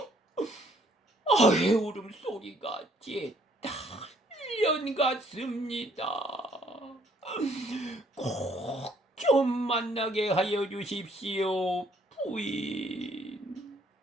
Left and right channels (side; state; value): both; normal; correlation 0.64